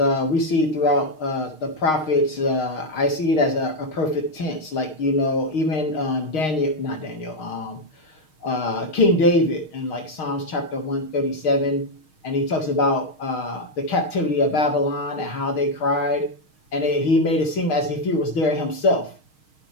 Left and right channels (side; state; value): right; late; 6.4 ms